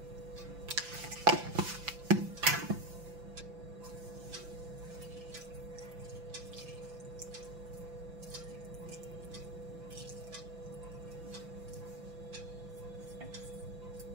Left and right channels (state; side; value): late; left; 5.9 ms